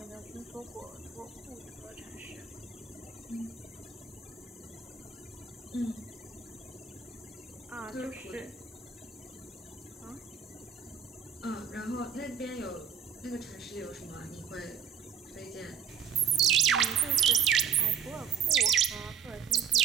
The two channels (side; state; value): left; quieter; 7.3 dB